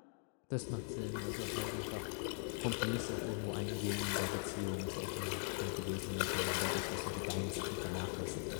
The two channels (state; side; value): silent; right; 50 dB below the other